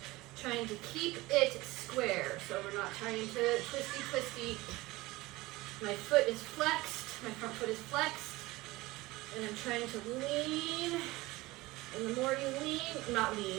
trying to keep it square. So we're not trying to twisty. My foot is flexed, my front foot is flexed, and I'm trying to lean. And the more you lean, not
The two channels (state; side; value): quieter; left; 20.1 dB